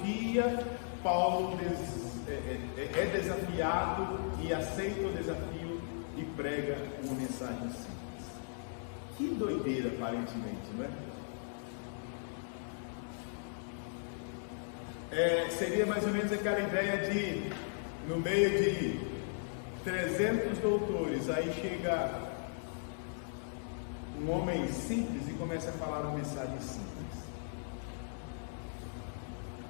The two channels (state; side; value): silent; right; digital silence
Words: Paulo é desafiado e aceita o desafio e prega uma mensagem simples. Que doideira, aparentemente, não é? Seria mais ou menos aquela ideia de, no meio de 300 doutores, aí chega um homem simples e começa a falar uma mensagem simples.